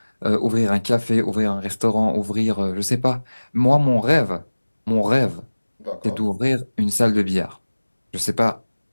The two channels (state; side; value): inverted; both; correlation -1.00